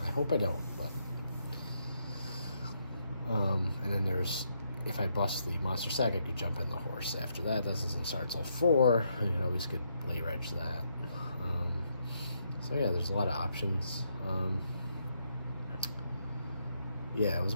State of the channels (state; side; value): inverted; both; correlation -0.77